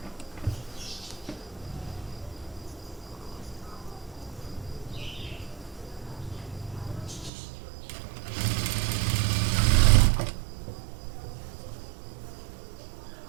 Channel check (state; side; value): drops out; left; at 7.3 s